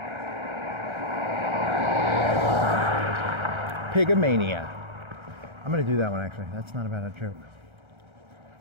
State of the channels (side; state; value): left; late; 1.3 ms